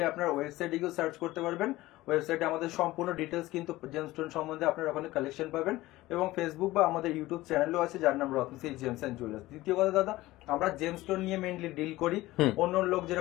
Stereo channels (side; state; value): right; quieter; 17.8 dB